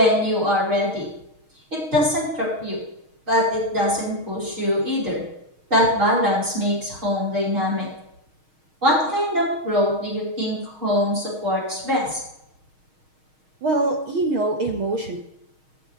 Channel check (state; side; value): late; left; 6.4 ms